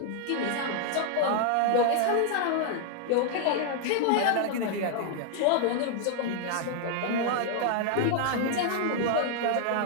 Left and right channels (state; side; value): different; both; correlation -0.01